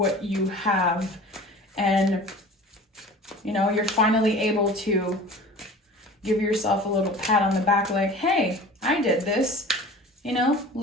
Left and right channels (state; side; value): normal; both; correlation 0.41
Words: you have. And, you know, you're finally able to give yourself a little pat on the back like, hey, I did this. You know,